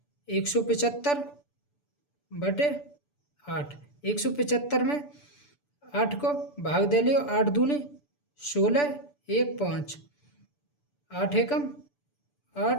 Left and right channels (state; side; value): late; right; 6.9 ms